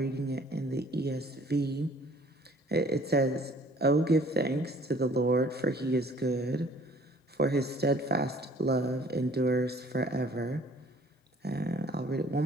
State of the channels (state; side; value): normal; both; correlation 0.55